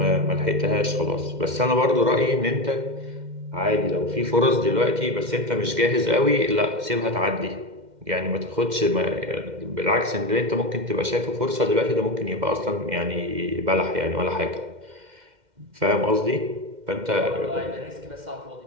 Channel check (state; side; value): late; left; 2.1 ms